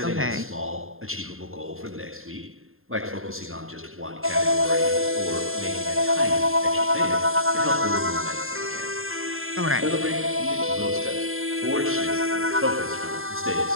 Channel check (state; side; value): late; left; 0.61 ms